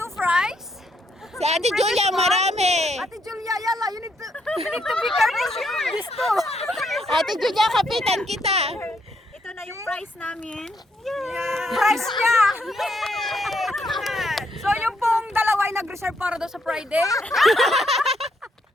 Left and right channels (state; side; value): normal; both; correlation 0.75